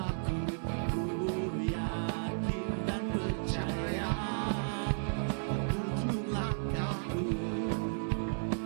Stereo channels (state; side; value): silent; left; digital silence